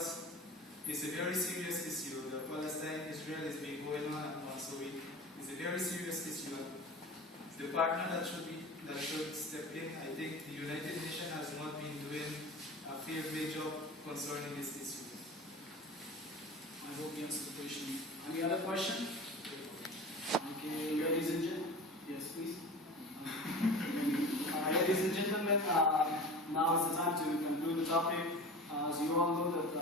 it's a very serious issue. The Palestine-Israel has been going on and on, so it's a very serious issue. The partner that should step in, I think the United Nations has not been doing a fair job concerning this issue. I hope you answered the question. Any other question? Okay, ladies and gentlemen, yes, please. Ladies and gentlemen, now is the time to conclude the topic. As you all know, that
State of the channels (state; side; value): normal; both; correlation 0.35